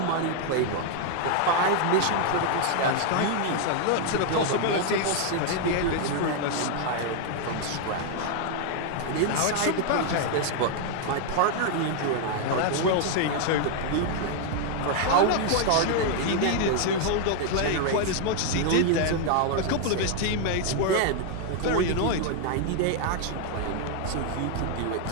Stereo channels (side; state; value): both; different; correlation 0.00